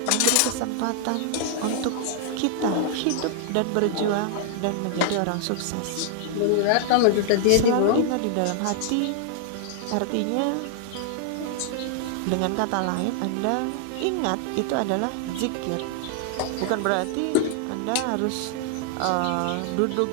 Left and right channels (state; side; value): different; both; correlation 0.00